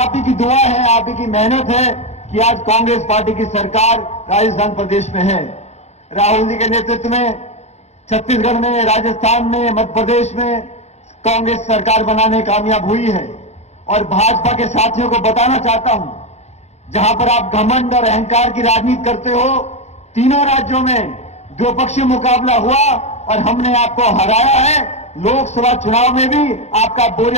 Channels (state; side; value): late; right; 0.32 ms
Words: ही की दुआ है, आप ही की मेहनत है कि आज कांग्रेस पार्टी की सरकार राजस्थान प्रदेश में है। राहुल जी के नेतृत्व में छत्तीसगढ़ में, राजस्थान में, मध्य प्रदेश में कांग्रेस सरकार बनाने कामयाब हुई है। और भाजपा के साथियों को बताना चाहता हूं, जहां पर आप घमंड और अहंकार की राजनीति करते हो, तीनों राज्यों में द्विपक्षीय मुकाबला हुआ और हमने आपको हराया है। लोकसभा चुनाव में भी आपका